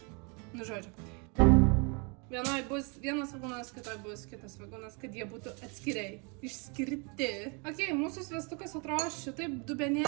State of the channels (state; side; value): quieter; left; 33.6 dB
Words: Nu, žodžiu. Vienoj bus vienas svogūnas, kitoj bus kitas svogūnas, kad jie būtų atskiriai, išskirti. Ok, mūsų sviestukas atrodo šitaip,